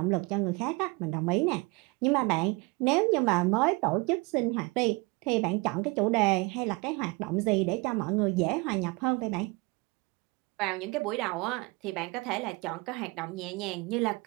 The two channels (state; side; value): quieter; left; 26.3 dB